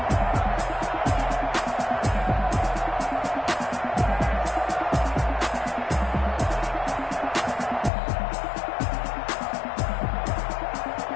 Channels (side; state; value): right; drops out; at 7.9 s